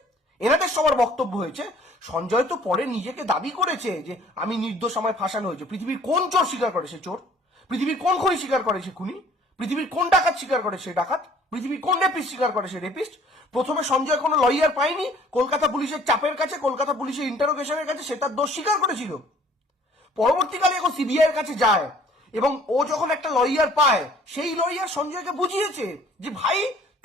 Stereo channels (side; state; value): both; normal; correlation 0.55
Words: এনাদের সবার বক্তব্য হয়েছে, সঞ্জয় তো পরে নিজেকে দাবি করেছে যে আমি নির্দোষ, আমায় ফাঁসানো হয়েছে। পৃথিবীর কোন চোর স্বীকার করে সে চোর? পৃথিবীর কোন খুনি স্বীকার করে সে খুনি? পৃথিবীর কোন ডাকাত স্বীকার করে সে ডাকাত? পৃথিবীর কোন রেপিস্ট স্বীকার করে সে রেপিস্ট? প্রথমে সঞ্জয় কোনো লয়ার পায়নি, কলকাতা পুলিশের চাপের কাছে, কলকাতা পুলিশের ইন্টারোগেশনের কাছে সে তার দোষ স্বীকার করেছিল। পরবর্তীকালে এখন সিবিআই এর কাছে যায় এবং ও যখন একটা লয়ার পায়, সেই লয়ার সঞ্জয়কে বুঝিয়েছে যে ভাই,